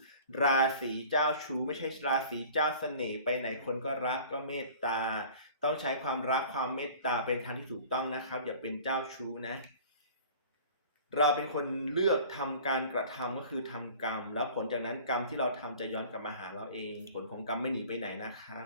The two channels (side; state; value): both; inverted; correlation -0.45